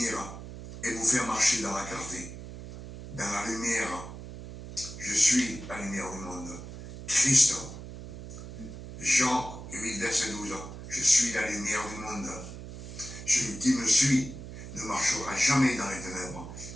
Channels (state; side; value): noise; right; hum, 12 dB below the sound